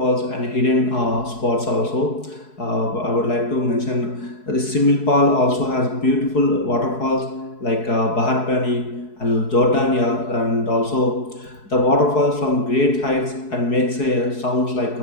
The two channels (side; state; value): right; late; 4.7 ms